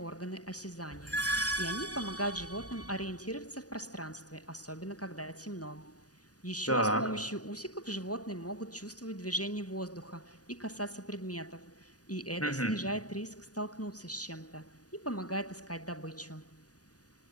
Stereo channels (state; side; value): late; right; 0.68 ms